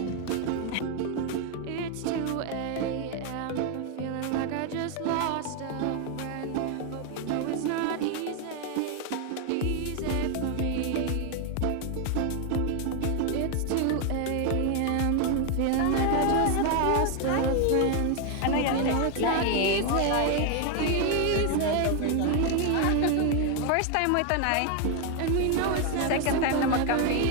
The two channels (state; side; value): different; both; correlation 0.01